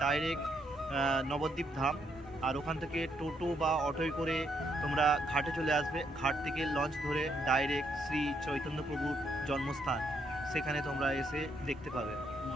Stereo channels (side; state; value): both; normal; correlation 0.75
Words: ডাইরেক্ট নবদ্বীপ ধাম, আর ওখান থেকে টোটো বা অটোয় করে তোমরা ঘাটে চলে আসবে। ঘাট থেকে লঞ্চ ধরে ডাইরেক্ট শ্রী চৈতন্য প্রভুর জন্মস্থান, সেখানে তোমরা এসে দেখতে পাবে